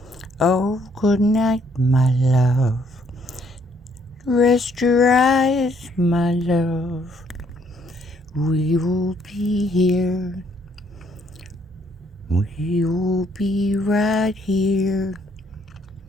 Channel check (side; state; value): both; normal; correlation 0.68